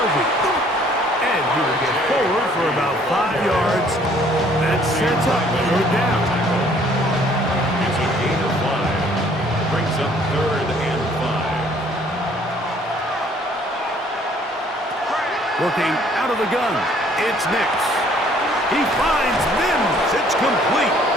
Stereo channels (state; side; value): normal; both; correlation 0.60